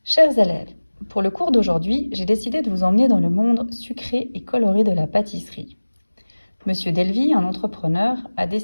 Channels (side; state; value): both; inverted; correlation -1.00